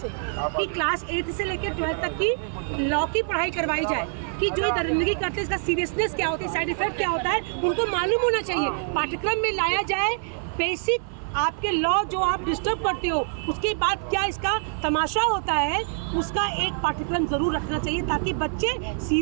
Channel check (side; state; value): left; silent; 56 dB below the other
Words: कि क्लास 8 से लेकर 12 तक की लॉ की पढ़ाई करवाई जाए कि जो ये दरिंदगी करते हैं इसका सीरियसनेस क्या होता है, साइड इफेक्ट क्या होता है, उनको मालूम होना चाहिए। पाठ्यक्रम में लाया जाए बेसिक आपके लॉ जो आप डिस्टर्ब करते हो, उसके बाद क्या इसका तमाशा होता है, उसका एक पाठ्यक्रम जरूर रखना चाहिए ताकि बच्चे